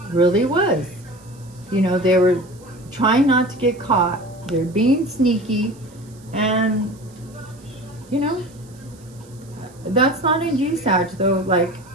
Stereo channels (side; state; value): right; noise; hiss, 27 dB below the sound